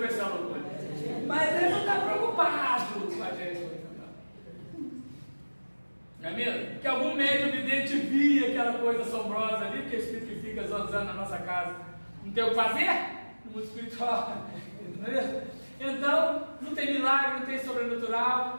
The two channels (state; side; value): inverted; both; correlation -1.00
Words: ser uma loucura. Mas ele não está preocupado com a gente. Não é mesmo? Que algum médium vidente via aquela coisa assombrosa ali, que o espírito fica zonzando na nossa casa. Não tem o que fazer? No mundo espiritual. Não é mesmo? Então, não tem milagre, não tem sobrenatural.